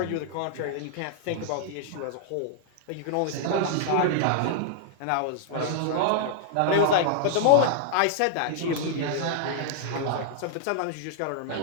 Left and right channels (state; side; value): different; both; correlation -0.01